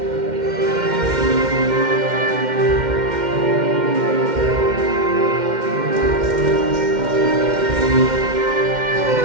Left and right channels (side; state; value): left; late; 2.1 ms